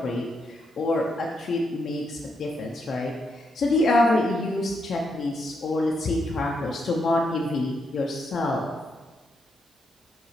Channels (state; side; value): normal; both; correlation 0.80